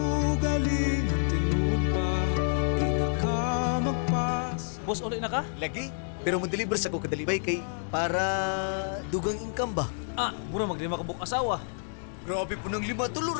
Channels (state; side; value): silent; right; digital silence